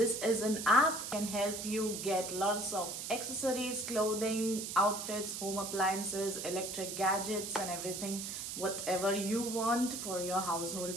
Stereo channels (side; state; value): right; noise; hiss, 6 dB below the sound